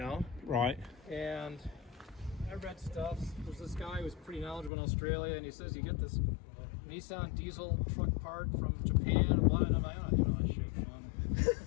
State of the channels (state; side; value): drops out; right; at 4.7 s